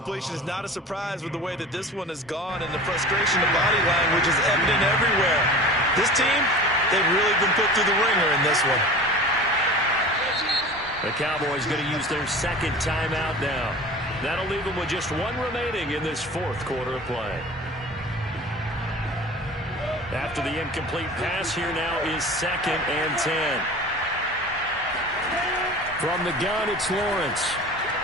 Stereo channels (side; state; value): both; normal; correlation 0.38